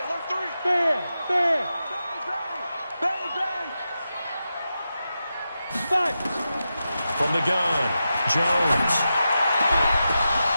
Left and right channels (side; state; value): both; inverted; correlation -0.90